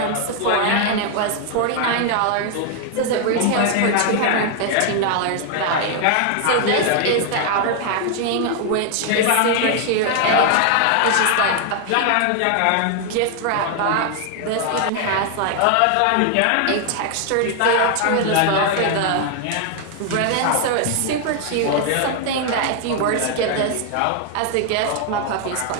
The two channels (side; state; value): both; different; correlation 0.00